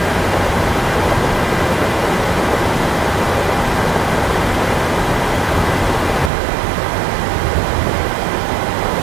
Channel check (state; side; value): drops out; left; at 6.3 s